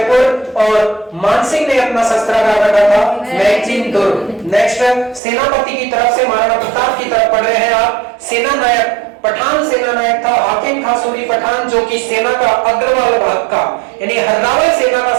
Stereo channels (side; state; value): left; drops out; at 5.2 s